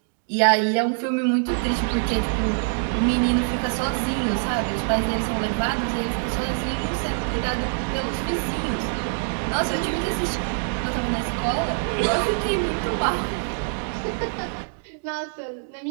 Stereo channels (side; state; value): left; silent; digital silence